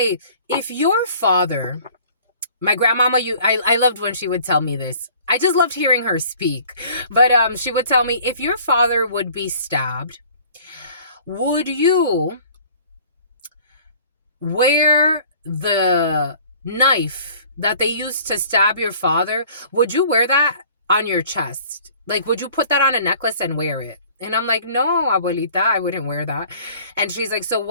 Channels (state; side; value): inverted; both; correlation -0.51